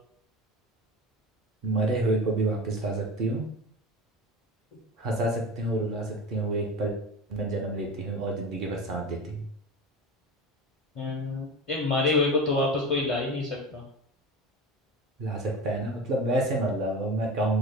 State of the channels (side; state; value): both; normal; correlation 0.30